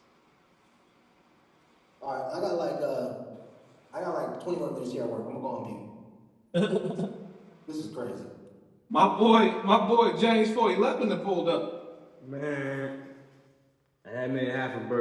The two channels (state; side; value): identical; both; correlation 1.00